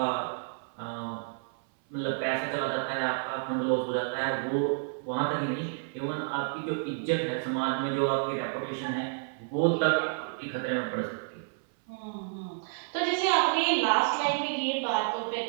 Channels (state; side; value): silent; left; 58 dB below the other